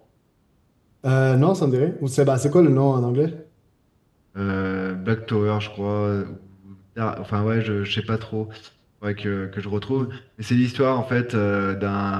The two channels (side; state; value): both; identical; correlation 1.00